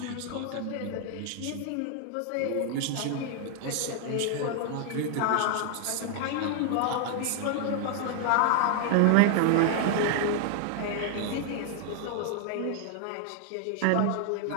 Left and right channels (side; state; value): both; different; correlation 0.00